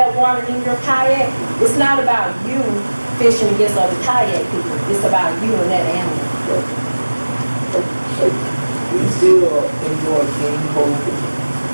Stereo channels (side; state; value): both; inverted; correlation -1.00